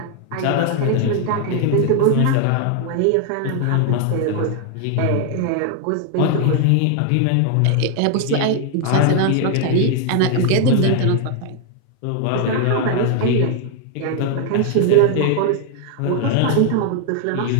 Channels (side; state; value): both; different; correlation 0.00